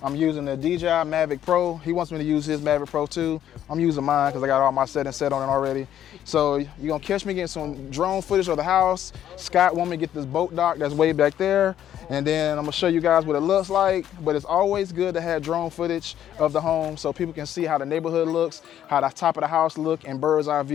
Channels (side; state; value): right; quieter; 10.8 dB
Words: I'm using the DJI Mavic Pro. He wants me to use his Mavic Pro too. I'm using mine because I got all my settings set on it already. So you're gonna catch me getting some drone footage of the house. Scott want me to get this boat dock that's way back there. And then I'm gonna show you guys what it looks like. But it's always good to have drone footage of the home so people can see how the neighborhood looks, how the top of the house look, and bird's eye